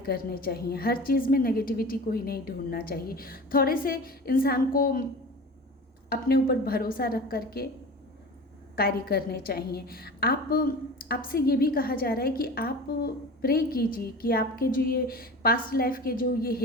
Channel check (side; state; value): both; normal; correlation 0.35